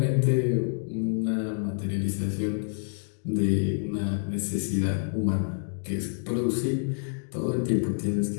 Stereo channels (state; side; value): silent; right; digital silence